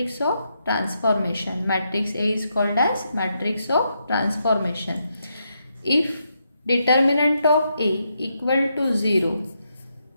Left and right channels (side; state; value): both; inverted; correlation -0.81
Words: of transformation. Matrix A is called as matrix of transformation. If determinant of A equal to 0,